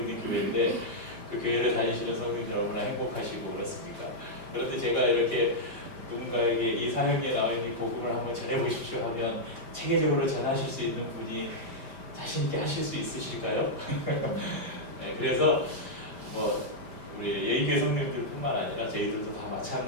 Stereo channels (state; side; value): late; left; 5.1 ms